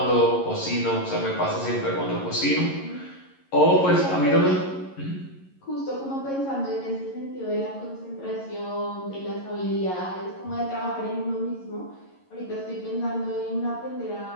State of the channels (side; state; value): right; late; 11 ms